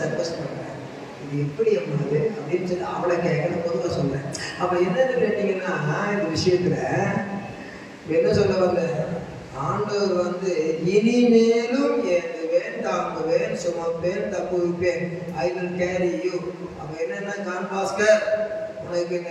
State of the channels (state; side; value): identical; both; correlation 1.00